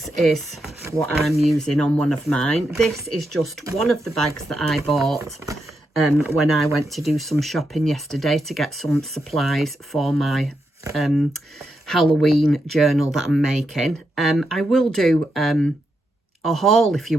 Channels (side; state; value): both; normal; correlation 0.85